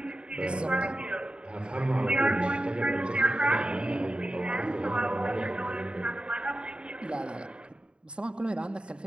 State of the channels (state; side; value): late; left; 0.053 ms